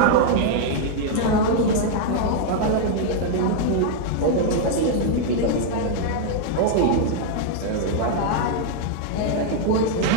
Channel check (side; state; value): both; different; correlation 0.00